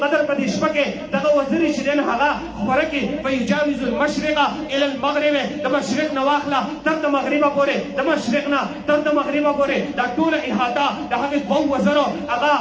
په دې شپه کې دغه وزرې چې دی هغه خوره کې فيجاوز المشرق الى المغرب د مشرق نه واخله تر د مغربه پورې د مشرق نه تر د مغربه پورې دا ټوله احاطه د هغې 2 وزرو هغه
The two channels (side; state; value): both; identical; correlation 1.00